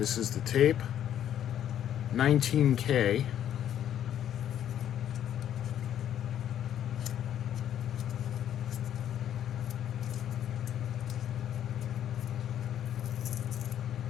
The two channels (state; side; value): quieter; right; 10.4 dB